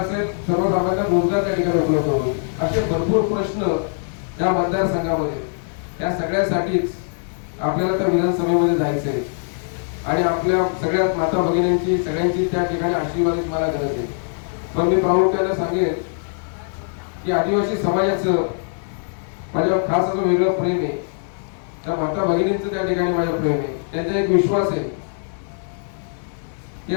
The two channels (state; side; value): silent; right; digital silence